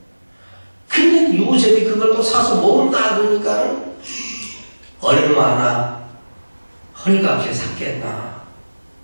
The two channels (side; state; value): both; inverted; correlation -1.00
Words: 근데 요셉이 그걸 또 사서 모은다 그러니까 얼마나 헐값에 샀겠나.